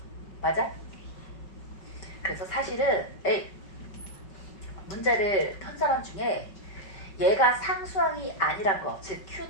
맞아? 그래서 사실은 문제를 편 사람 중에 얘가 상수항이 아니란 거, 즉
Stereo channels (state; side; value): late; right; 5.3 ms